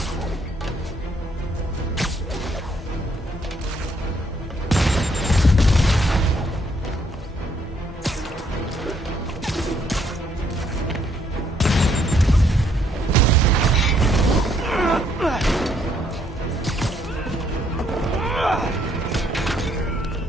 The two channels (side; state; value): both; normal; correlation 0.69